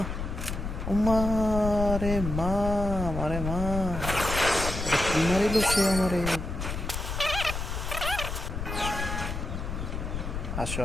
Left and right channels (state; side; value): noise; left; rumble, 4 dB below the sound